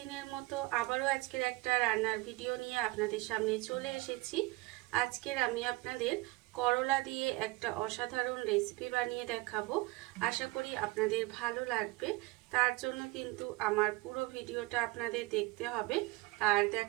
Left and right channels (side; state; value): left; quieter; 21.6 dB